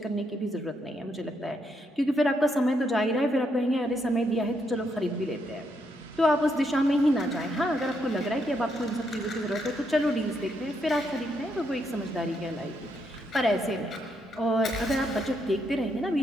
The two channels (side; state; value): both; normal; correlation 0.77